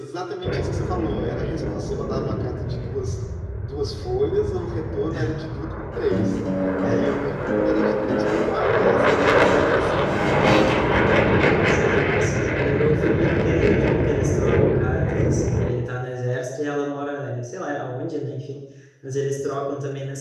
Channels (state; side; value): identical; both; correlation 1.00